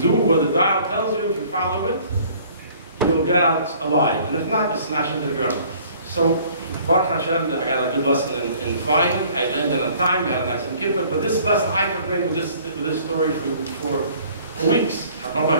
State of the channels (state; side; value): inverted; both; correlation -0.54